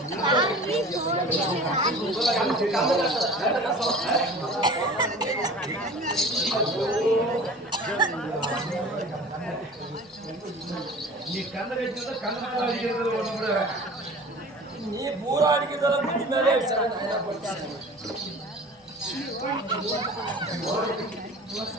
நீ பூரா அடிக்கிறதால முடி மேலே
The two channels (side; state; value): both; normal; correlation 0.41